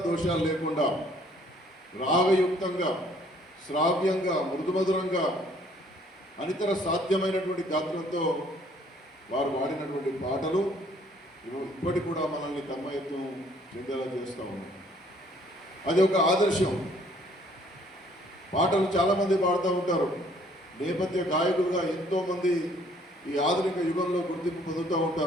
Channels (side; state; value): both; normal; correlation 0.61